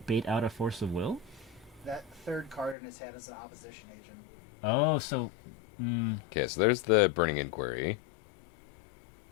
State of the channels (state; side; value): drops out; right; at 2.8 s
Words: bait out a Force of Will? That third card in his hand is an opposition agent. Oh, so... Okay, so there's the Burning Inquiry.